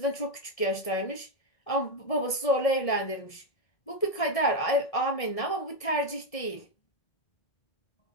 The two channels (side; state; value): right; late; 1.7 ms